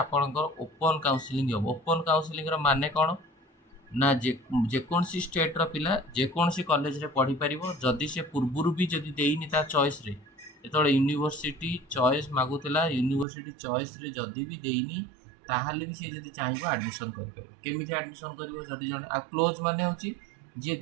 ओपन काउंसलिंग हम। ओपन काउंसलिंग माने कौन ना, जेकोसी स्टेट्र पिला जेकोसी कॉलेज रे पढ़ी पारिबो, जदि से पूर्वरु भी जदि देइनी ता चॉइस रे, जेतबेले यूनिवर्सिटी चॉइस मागुतला, यूनिवर्सिटी चॉइस रे जदि भी देइनी ताहाले भी से जदि चाहिबो एडमिशन करि पारिबो। केमिति एडमिशन करिवो, जदि जने आ क्लोज माने होची जे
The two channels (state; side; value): drops out; left; at 13.2 s